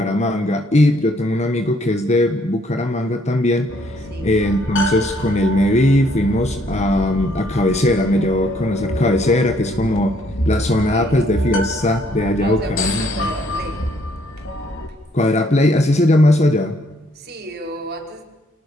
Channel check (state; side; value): normal; both; correlation 0.67